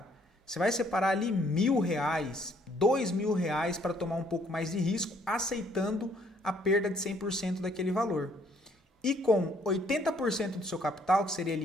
você vai separar ali R$1.000, R$2.000 para tomar um pouco mais de risco, aceitando a perda de 100% daquele valor. E com 80% do seu capital, que seria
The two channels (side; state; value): both; normal; correlation 0.64